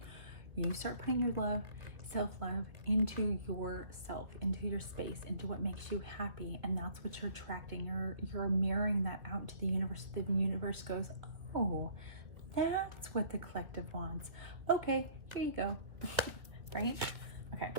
You start putting your love, self-love into yourself, into your space, into what makes you happy, and that's what you're attracting. You're mirroring that out to the universe. The universe goes, oh, that's what the collective wants. Okay, here you go. Right? Okay.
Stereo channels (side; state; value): left; late; 1.7 ms